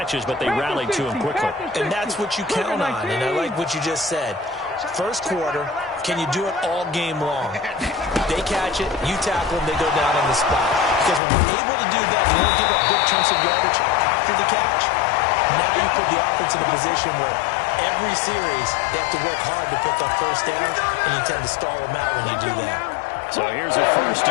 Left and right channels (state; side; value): drops out; right; at 11.2 s